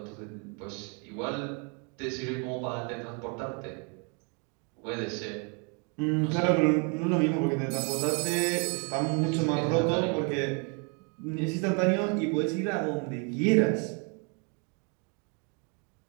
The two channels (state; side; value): quieter; left; 35.9 dB